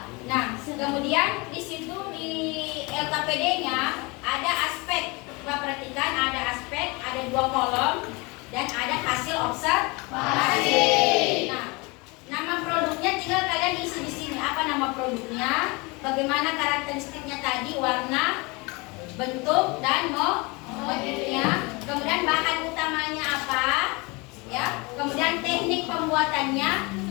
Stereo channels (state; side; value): quieter; right; 26.9 dB